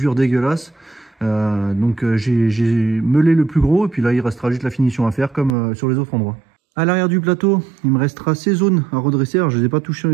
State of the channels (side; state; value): left; drops out; at 5.6 s